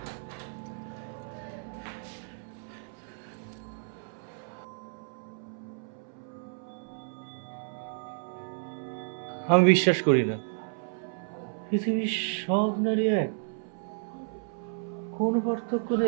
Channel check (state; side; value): silent; left; 57 dB below the other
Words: আমি বিশ্বাস করি না পৃথিবীর সব নারী এক, কোনো পার্থক্য